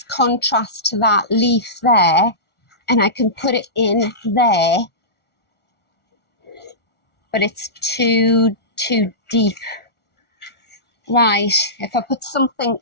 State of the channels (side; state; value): right; late; 1.4 ms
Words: contrast to that leaf there. And I can put it in there, but it's too deep. Right, if I put something